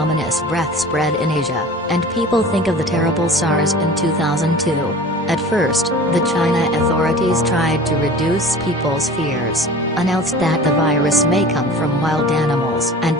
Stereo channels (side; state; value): both; normal; correlation 0.40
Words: breath spread in Asia, and people think of the terrible SARS in 2002. At first, the China authorities tried to reduce people's fears, announced that the virus may come from wild animals and